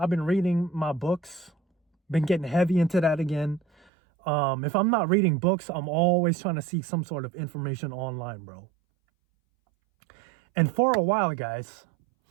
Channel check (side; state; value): left; drops out; at 3.9 s